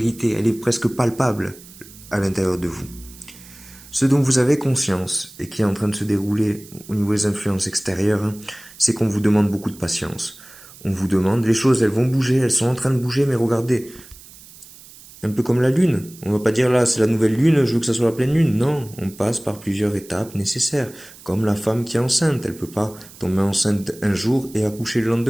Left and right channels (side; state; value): right; noise; hiss, 20 dB below the sound